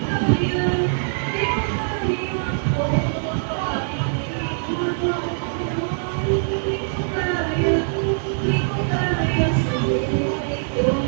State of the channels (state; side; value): silent; left; digital silence